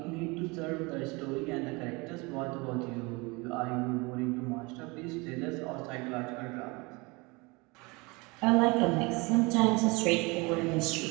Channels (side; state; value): left; quieter; 26.3 dB